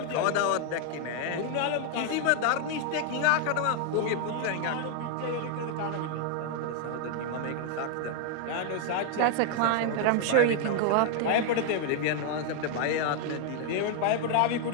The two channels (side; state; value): both; different; correlation 0.00